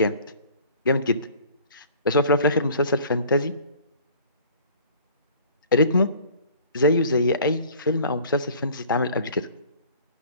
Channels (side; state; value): both; inverted; correlation -0.49